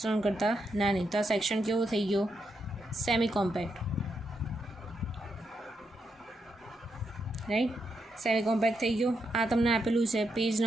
કરતાં નાની. તો આ સેક્શન કેવો થઈ ગયો? Semi compact, right, semi compact થઈ ગયો. આ તમને આપેલું છે page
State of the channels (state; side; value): normal; both; correlation 0.81